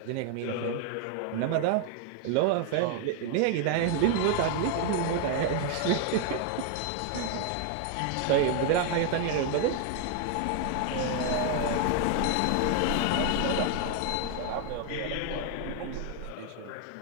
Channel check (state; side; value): different; both; correlation 0.00